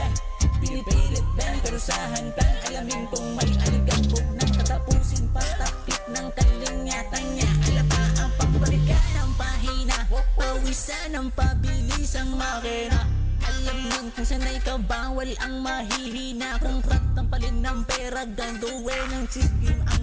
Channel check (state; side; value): identical; both; correlation 1.00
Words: Pinipilit din, pero sa hantang alamin kung may aligabog ng katapusin, patakip ng kalingatan niya. Alapa ang pagbalikan ng pahina, pawisan ang pabilis ang makina. Alam nun kung sanay ka bawal ang mahihina. Kung krat ang palin ng pera, ganduin ng sigim